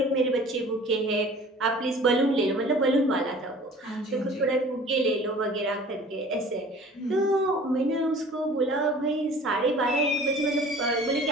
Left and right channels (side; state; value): both; normal; correlation 0.46